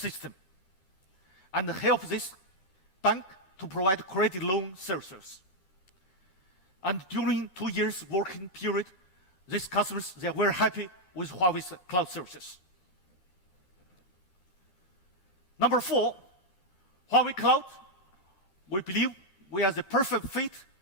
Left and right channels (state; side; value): late; right; 13 ms